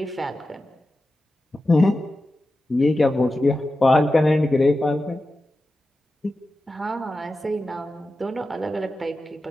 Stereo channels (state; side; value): normal; both; correlation 0.92